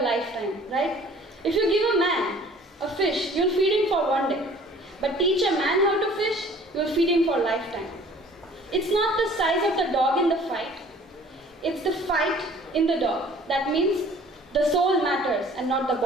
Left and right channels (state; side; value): normal; both; correlation 0.51